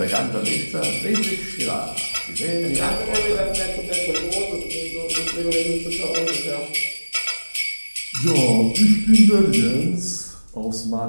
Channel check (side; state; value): both; inverted; correlation -1.00